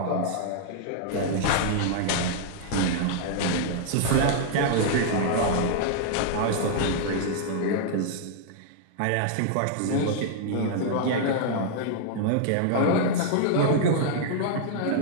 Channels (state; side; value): different; both; correlation -0.01